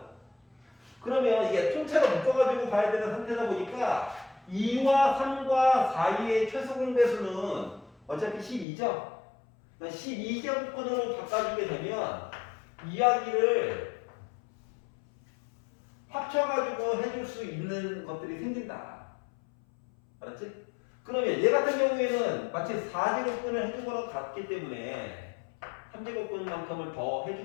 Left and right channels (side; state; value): right; drops out; at 8.7 s